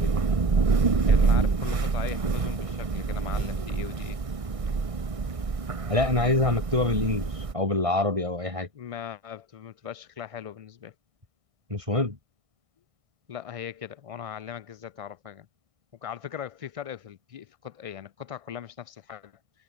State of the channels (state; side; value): late; left; 1.6 ms